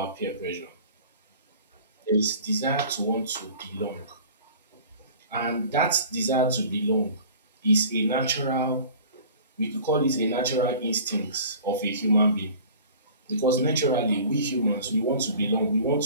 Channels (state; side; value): inverted; both; correlation -0.44